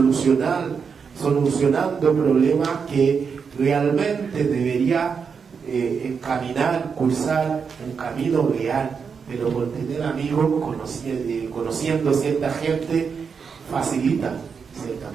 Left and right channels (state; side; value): quieter; left; 6.0 dB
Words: problemas que realmente debería cursar un camino real, pero por tener amigos, conociendo cierta gente, facilita ciertas